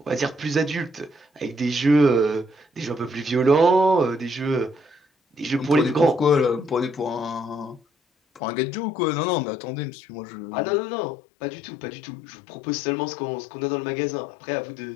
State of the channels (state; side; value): drops out; right; at 8.4 s